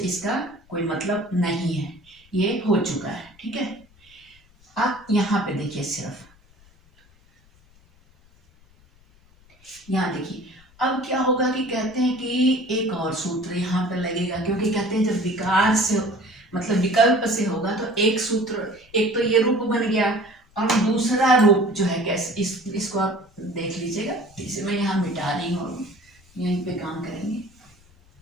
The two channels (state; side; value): noise; left; rumble, 29 dB below the sound